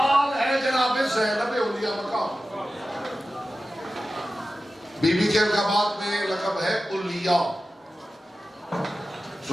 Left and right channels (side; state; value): both; normal; correlation 0.94